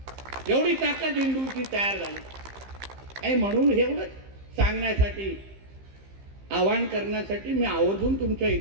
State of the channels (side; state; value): left; late; 15 ms